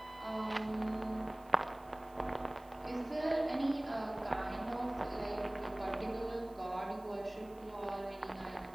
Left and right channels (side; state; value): right; noise; hiss, 27 dB below the sound